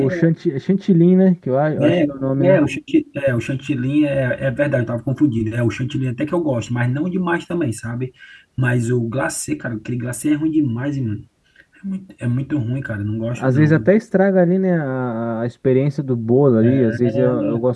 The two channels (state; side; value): identical; both; correlation 1.00